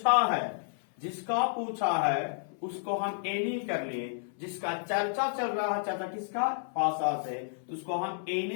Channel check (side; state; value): right; silent; 57 dB below the other